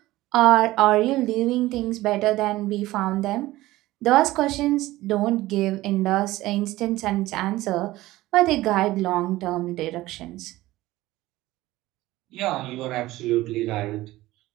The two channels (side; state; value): left; quieter; 17.3 dB